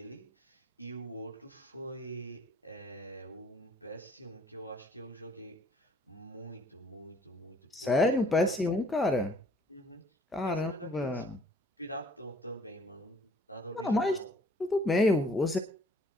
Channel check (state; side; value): normal; both; correlation 0.59